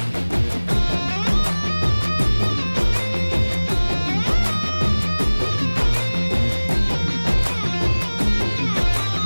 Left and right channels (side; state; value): both; inverted; correlation -1.00